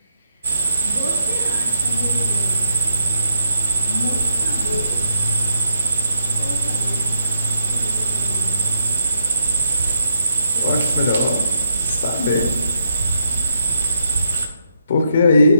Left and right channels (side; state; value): both; inverted; correlation -0.78